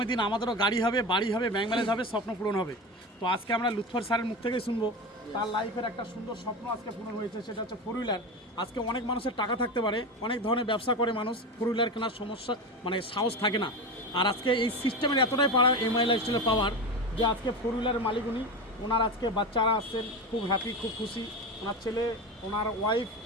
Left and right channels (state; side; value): normal; both; correlation 0.23